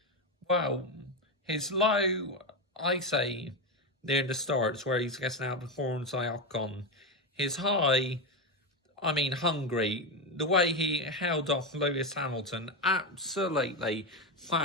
well, his low, I say, near the starts where he's getting outperformed by Ocon. His high, I mean, Hungary, the way he held off Lewis Hamilton, absolutely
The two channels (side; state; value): both; normal; correlation 0.13